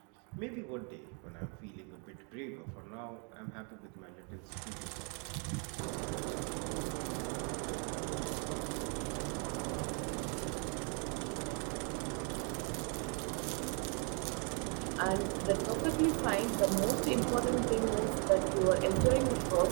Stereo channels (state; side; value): quieter; left; 37.8 dB